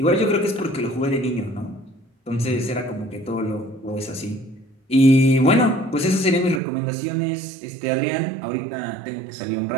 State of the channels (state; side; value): drops out; left; at 6.6 s